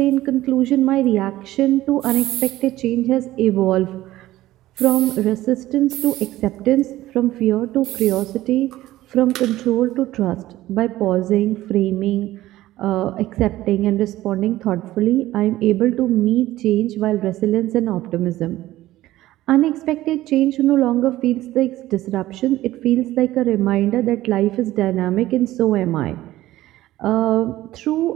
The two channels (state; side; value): quieter; left; 15.7 dB